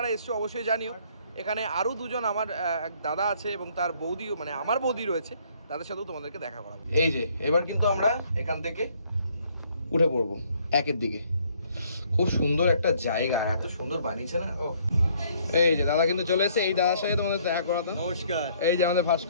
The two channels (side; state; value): both; inverted; correlation -0.64